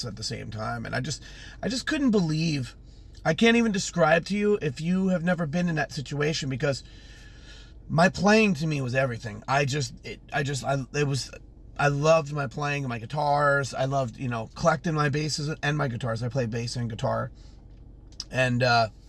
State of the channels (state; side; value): identical; both; correlation 1.00